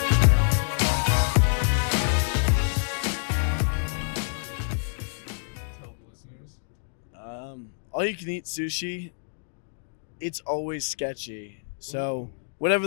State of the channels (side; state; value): right; silent; digital silence